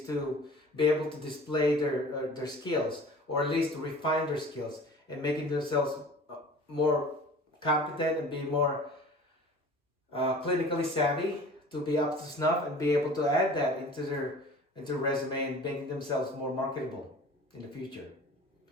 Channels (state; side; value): normal; both; correlation 0.43